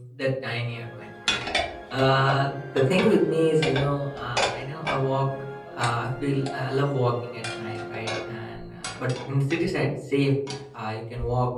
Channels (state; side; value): identical; both; correlation 1.00